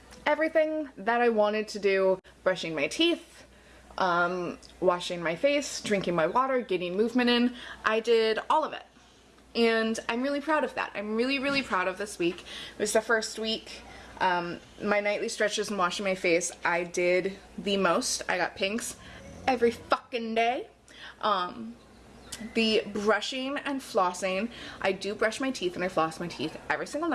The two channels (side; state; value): both; identical; correlation 1.00